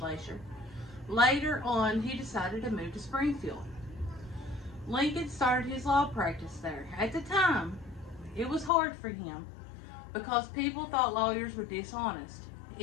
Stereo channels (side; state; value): right; drops out; at 8.7 s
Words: Later on, he decided to move to Springfield. Lincoln started his law practice there. At the time, it was hard for him because people thought lawyers were dishonest.